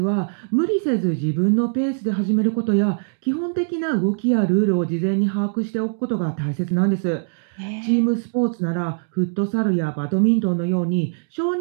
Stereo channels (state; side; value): silent; left; digital silence